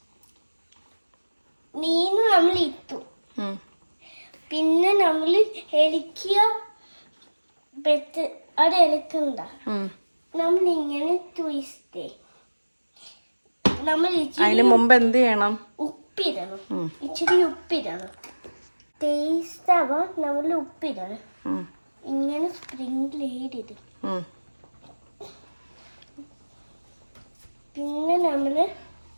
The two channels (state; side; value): inverted; both; correlation -1.00